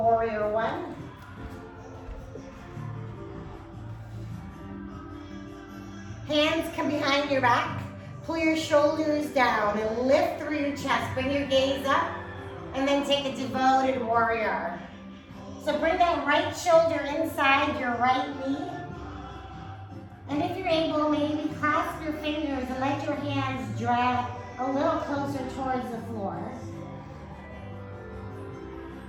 warrior one. Hands come behind your back. Pull your shoulders down and lift through your chest. Bring your gaze up and then take a devoted warrior. So bring that right shoulder inside your right knee. And if you're able, maybe clasp your fingers and let your hands drag a little closer towards the floor.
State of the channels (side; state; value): both; identical; correlation 1.00